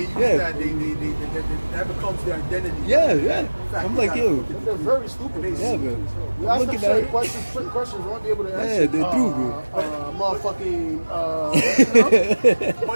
use Yeah. that becomes their identity. yeah. I'm like, yo, They're very stupid. yeah, man. You I'm ask them looking certain at questions, certain questions won't be able to Yeah, answer. they're true, bro. Motherfucking.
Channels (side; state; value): both; inverted; correlation -1.00